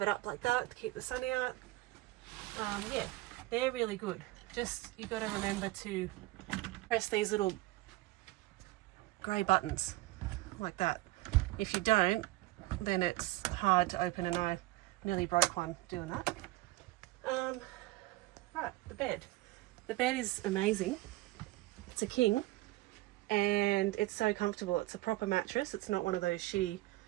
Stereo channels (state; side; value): quieter; left; 19.1 dB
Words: it up like that to keep the sun out. Yeah, they're really good. Just, you've got to remember to press these little grey buttons like that. If you don't, then it's hard to open, and I nearly broke one doing that. Right, the bed. The bed is amazing. It's a king, and it's so comfortable. It's a proper mattress. It's not one of those shitty